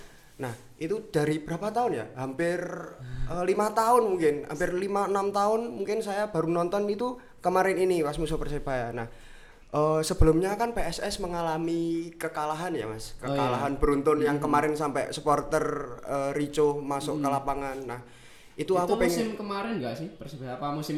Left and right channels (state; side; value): identical; both; correlation 1.00